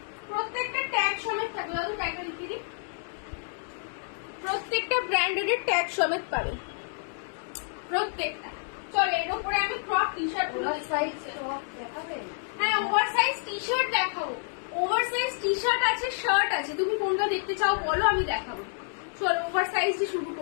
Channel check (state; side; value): silent; right; digital silence